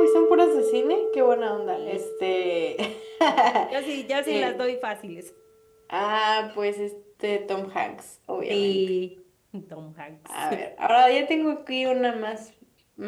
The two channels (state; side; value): identical; both; correlation 1.00